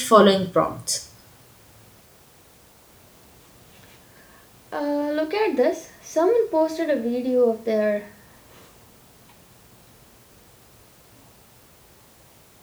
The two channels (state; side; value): identical; both; correlation 1.00